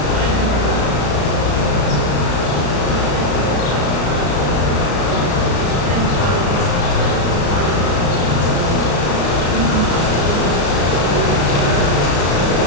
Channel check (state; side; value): late; right; 34 ms